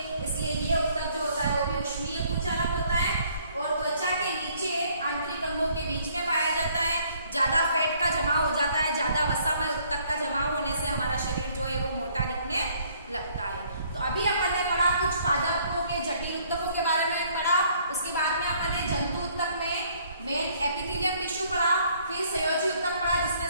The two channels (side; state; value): both; inverted; correlation -0.63